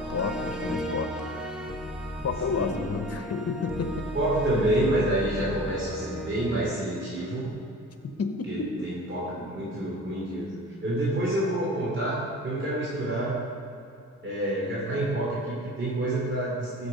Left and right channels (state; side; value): normal; both; correlation 0.40